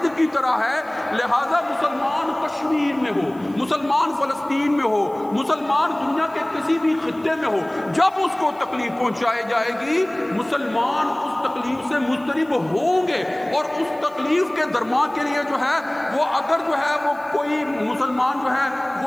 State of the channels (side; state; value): right; noise; hiss, 28 dB below the sound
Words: کی طرح ہے. لہذا مسلمان کشمیر میں ہو، مسلمان فلسطین میں ہو، مسلمان دنیا کے کسی بھی خطے میں ہو، جب اس کو تکلیف پہنچائی جائے گی مسلمان اس تکلیف سے مضطرب ہوں گے. اور اس تکلیف کے درما کے لیے جو ہے وہ اگر جو ہے وہ کوئی مسلمان جو ہے